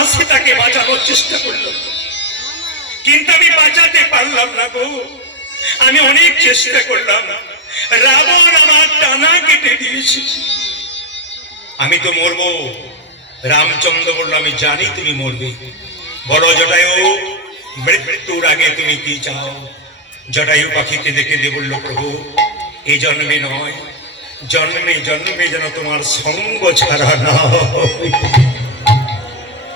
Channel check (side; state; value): both; normal; correlation 0.04